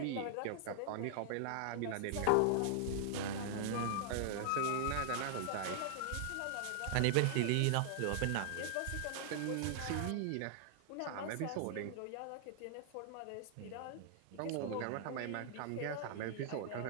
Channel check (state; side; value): different; both; correlation -0.01